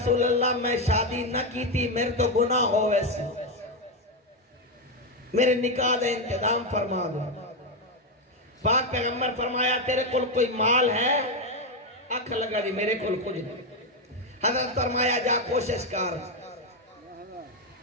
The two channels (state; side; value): normal; both; correlation 0.07